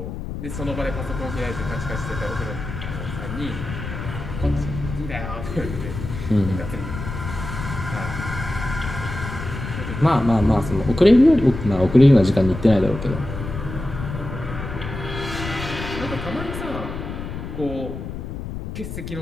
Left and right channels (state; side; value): noise; left; rumble, 7 dB below the sound